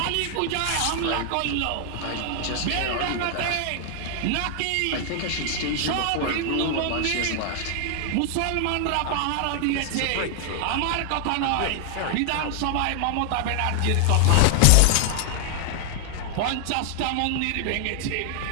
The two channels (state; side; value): different; both; correlation 0.00